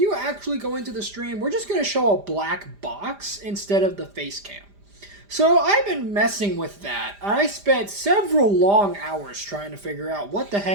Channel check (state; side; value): late; left; 5.0 ms